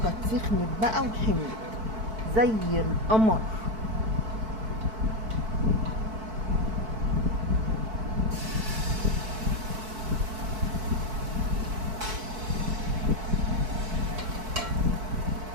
كانت سخنت بقى وحملت زي القمر.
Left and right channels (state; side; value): late; left; 4.6 ms